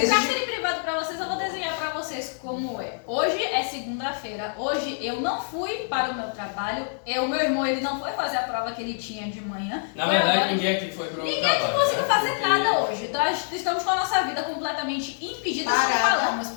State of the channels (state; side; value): silent; right; digital silence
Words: privado para vocês, eu vou desenhar para vocês como é. Hoje é segunda-feira. Hoje eu não fui para o meu trabalho. O meu irmão, ele não foi fazer a prova que ele tinha de manhã. Na Foi verdade, agora. ninguém aqui foi pro Ninguém trabalho. aqui conseguiu né? fazer Porque- nada hoje. Nós estamos com a nossa vida completamente impedida. Como Parada. falamos,